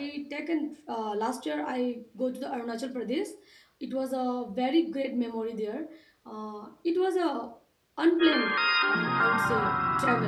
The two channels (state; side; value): identical; both; correlation 1.00